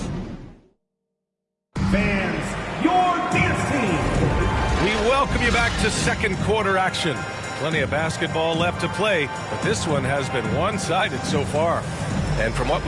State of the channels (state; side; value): identical; both; correlation 1.00